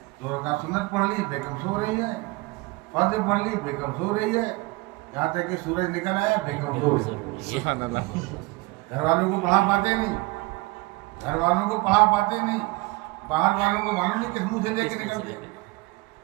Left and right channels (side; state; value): left; quieter; 23.6 dB